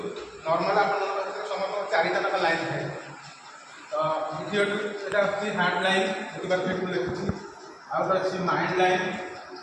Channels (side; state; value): both; identical; correlation 1.00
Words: नॉर्मल आप समस्त चारिटा तक लाइन थाए। तो द्वितीय यहाँ हार्ट लाइन देखिए देखुची आउट अच्छी माइंड लाइन